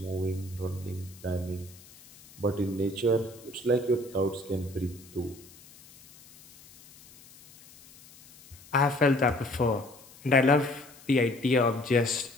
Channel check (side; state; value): left; noise; hiss, 23 dB below the sound